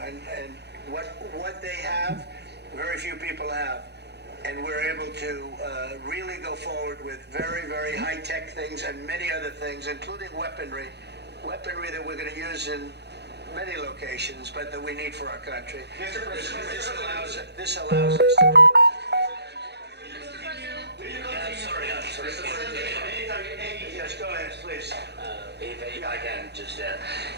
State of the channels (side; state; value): left; late; 0.49 ms